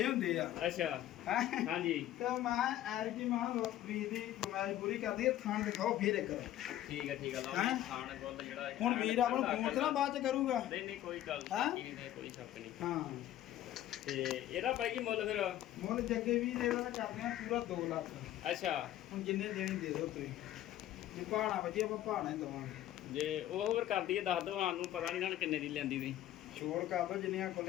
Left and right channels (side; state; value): right; quieter; 13.1 dB